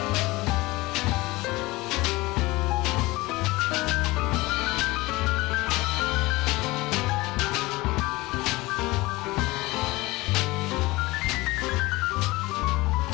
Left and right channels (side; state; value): right; quieter; 21.0 dB